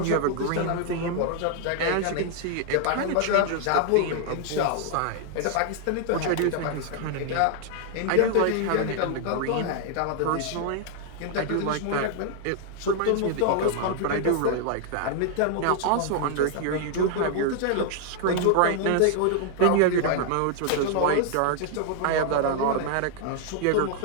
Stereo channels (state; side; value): different; both; correlation 0.00